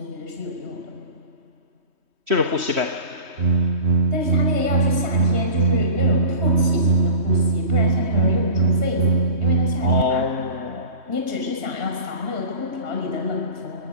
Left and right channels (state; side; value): late; left; 3.2 ms